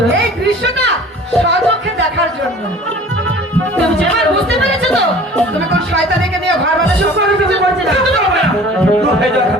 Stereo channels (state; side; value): normal; both; correlation 0.46